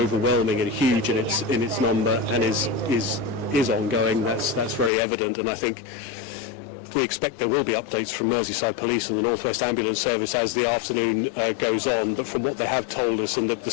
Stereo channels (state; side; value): drops out; right; at 4.9 s